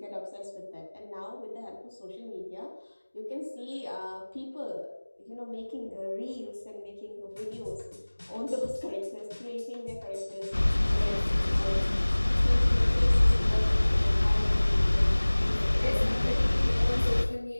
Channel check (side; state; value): both; inverted; correlation -1.00